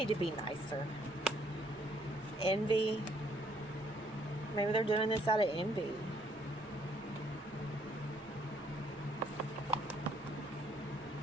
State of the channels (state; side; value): normal; both; correlation 0.67